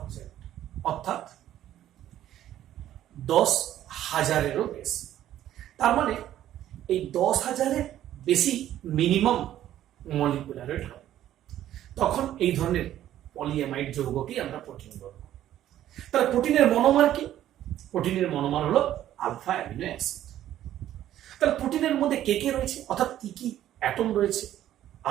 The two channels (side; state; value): left; quieter; 12.3 dB